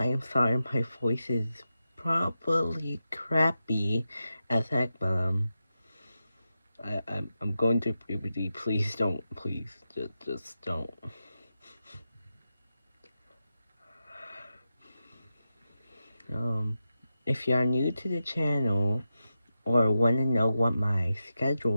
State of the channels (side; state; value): both; inverted; correlation -0.90